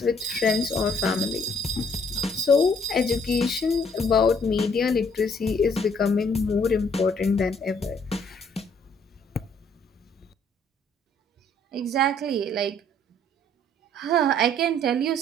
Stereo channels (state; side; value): normal; both; correlation 0.63